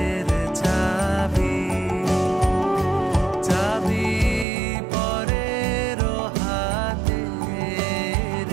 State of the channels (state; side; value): drops out; left; at 4.5 s